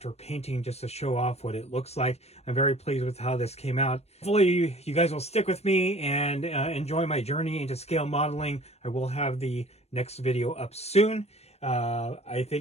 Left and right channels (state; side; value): late; right; 0.31 ms